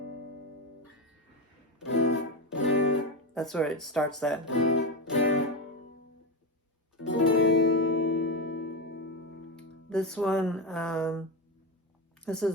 That's where it starts that. This one, this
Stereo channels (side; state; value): both; normal; correlation 0.14